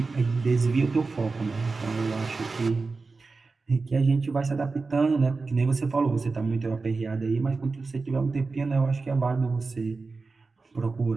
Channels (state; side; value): quieter; left; 4.0 dB